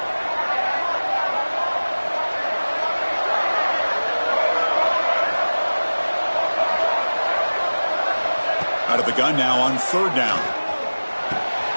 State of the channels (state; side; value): inverted; both; correlation -1.00